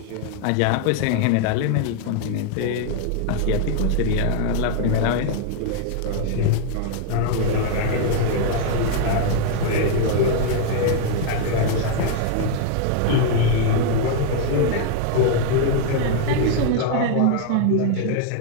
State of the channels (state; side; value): different; both; correlation 0.00